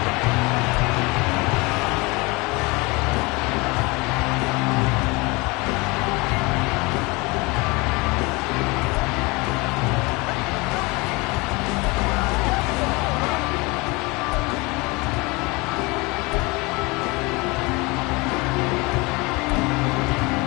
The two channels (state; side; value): quieter; right; 25.5 dB